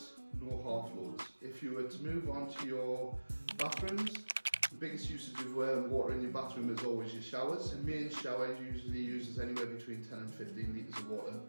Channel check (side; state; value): both; inverted; correlation -1.00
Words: no half loads. If you were to move on to your bathrooms, the biggest usage of water in your bathroom is always your showers. A main shower usually uses anywhere between 10 and 15 litres of water